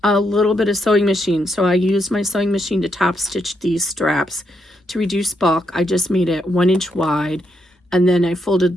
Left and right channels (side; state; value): both; normal; correlation 0.79